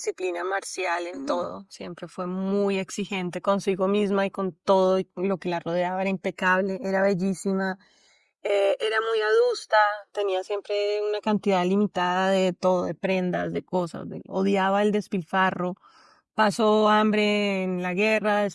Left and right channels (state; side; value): identical; both; correlation 1.00